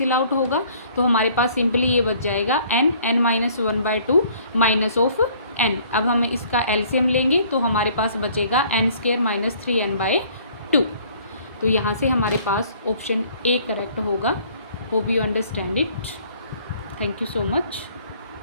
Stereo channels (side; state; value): both; inverted; correlation -0.57